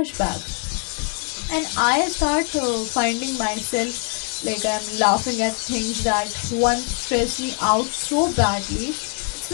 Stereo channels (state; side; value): quieter; right; 34.5 dB